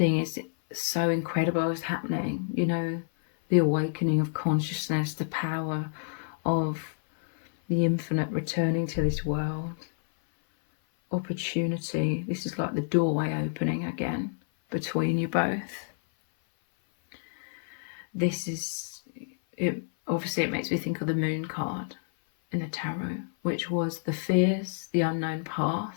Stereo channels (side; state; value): right; silent; 56 dB below the other